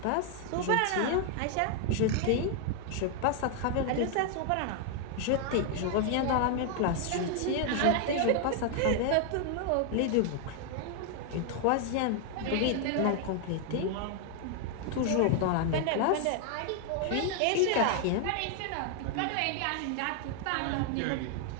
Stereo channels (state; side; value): different; both; correlation 0.00